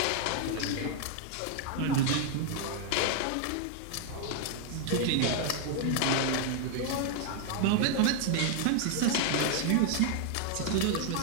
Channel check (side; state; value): both; different; correlation 0.00